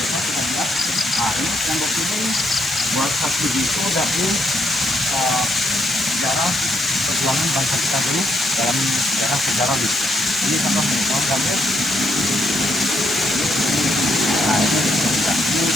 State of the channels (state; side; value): normal; both; correlation 0.75